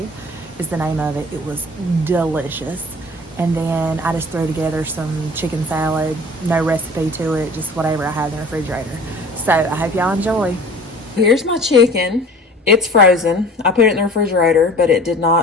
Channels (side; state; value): both; normal; correlation 0.44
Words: is the name of it. It was delicious. And then I just threw together some chicken salad, no recipe to it, just whatever I had in the refrigerator. So I hope y'all enjoy. Here's my chicken. It's frozen. I put it in the refrigerator, but it did